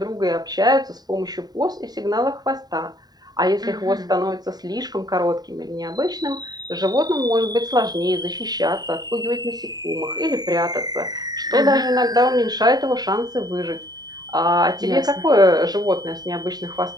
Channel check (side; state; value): left; late; 0.19 ms